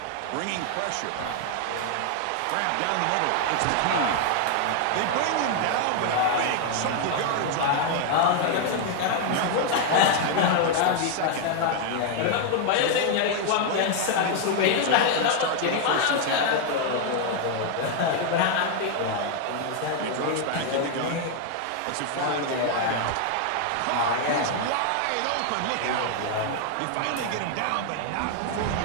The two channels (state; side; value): different; both; correlation 0.00